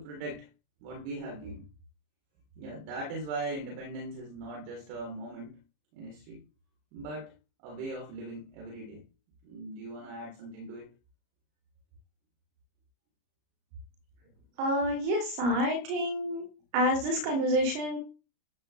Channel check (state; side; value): late; left; 33 ms